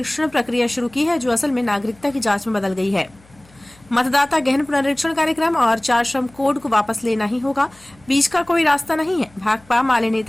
प्रक्रिया शुरू की है जो असल में नागरिकता की जांच में बदल गई है। मतदाता गहन पुनरीक्षण कार्यक्रम और 4 श्रम कोड को वापस लेना ही होगा, बीच का कोई रास्ता नहीं है। भाकपा माले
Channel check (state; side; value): noise; left; hum, 28 dB below the sound